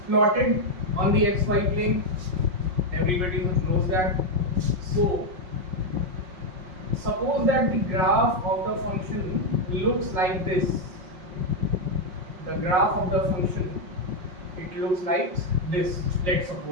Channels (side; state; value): left; late; 5.5 ms